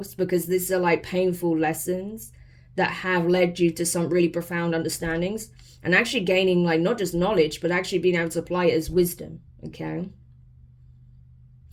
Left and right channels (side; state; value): both; identical; correlation 1.00